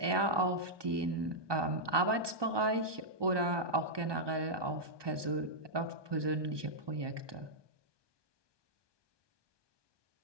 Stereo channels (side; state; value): left; late; 1.2 ms